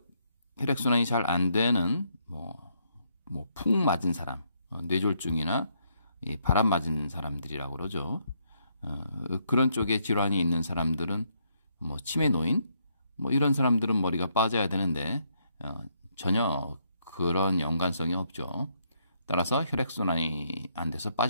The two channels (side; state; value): both; inverted; correlation -0.74